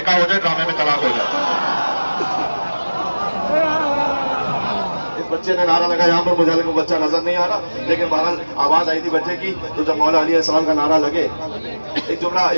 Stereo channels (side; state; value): both; inverted; correlation -1.00